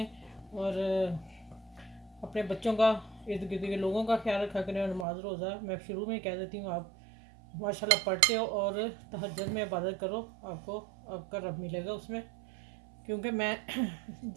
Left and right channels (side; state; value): left; drops out; at 5.1 s